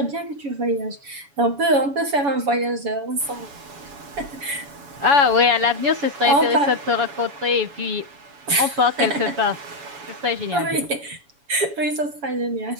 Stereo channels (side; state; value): left; late; 7.1 ms